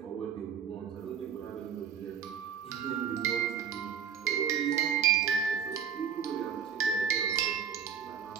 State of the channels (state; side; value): quieter; left; 7.6 dB